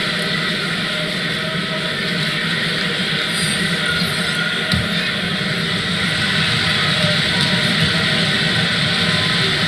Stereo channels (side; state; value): both; identical; correlation 1.00